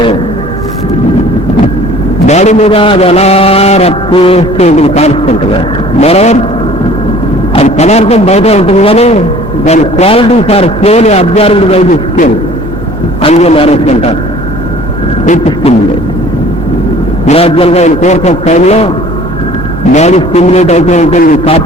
బాడీ మీద అది ఎలా రప్పు వేస్తూ ఉంటుంది కాన్స్టెంట్గా. మరోవర్ అది పదార్థం బయట ఉంటుంది కానీ దాని qualities are slowly absorbed by the skin and marriage అంటారు. విత్ స్టిమ్యులేట్ గ్రాడ్యువల్ గా ఇన్ కోర్స్ ఆఫ్ టైంలో బాడీ స్టిమ్యులేట్ అవుతూ ఉంటుంది.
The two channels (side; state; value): both; normal; correlation 0.50